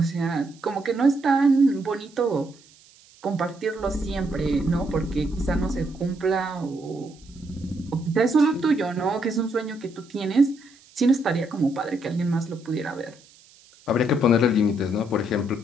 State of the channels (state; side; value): noise; right; hiss, 27 dB below the sound